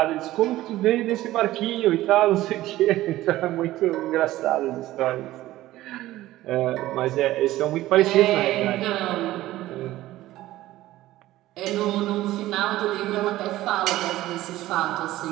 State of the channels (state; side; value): quieter; left; 15.7 dB